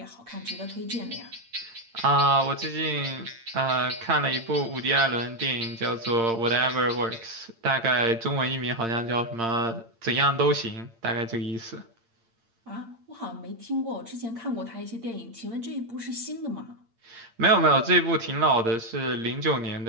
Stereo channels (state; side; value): late; left; 8.8 ms